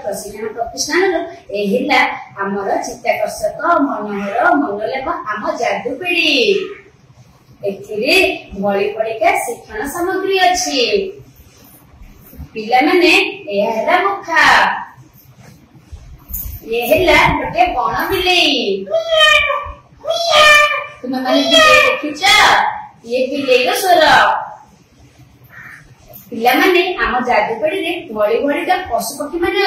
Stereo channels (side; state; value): both; identical; correlation 1.00